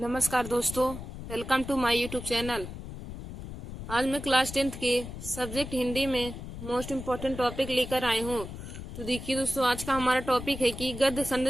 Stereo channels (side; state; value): left; noise; rumble, 10 dB below the sound